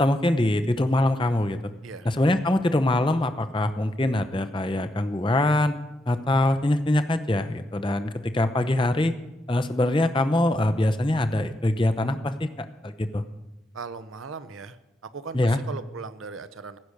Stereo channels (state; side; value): normal; both; correlation 0.82